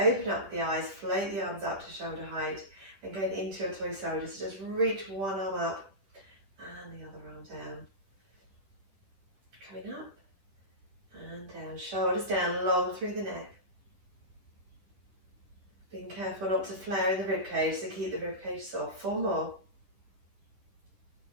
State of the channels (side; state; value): left; late; 10 ms